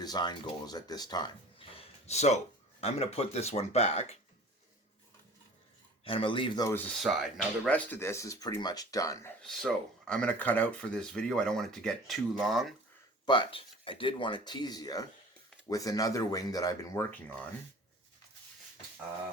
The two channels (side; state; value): both; normal; correlation 0.44